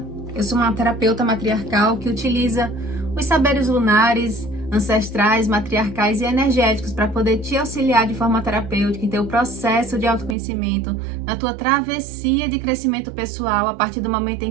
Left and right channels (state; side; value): drops out; left; at 10.4 s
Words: Eu sou uma terapeuta matriarcal que utiliza os saberes lunares, ancestrais, matriarcais e energéticos para poder te auxiliar de forma terapêutica em teu processo de autoconhecimento, na tua travessia de crescimento pessoal, a partir do momento